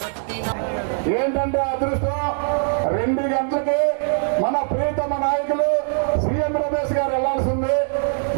పట్టినాడు ఏంటంటే అదృష్టం 2 గంటలకి మన ప్రియతమ నాయకులు సీఎం రమేష్ గారు వెళ్లాల్సింది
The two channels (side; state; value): left; silent; digital silence